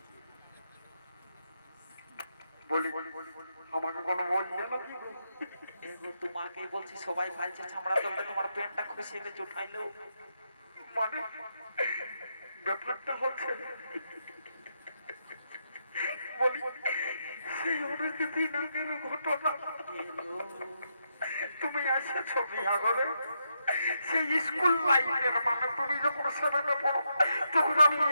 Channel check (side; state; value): both; inverted; correlation -0.82